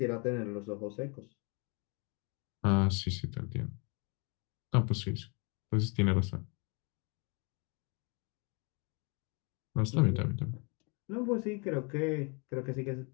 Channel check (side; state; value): right; quieter; 33.0 dB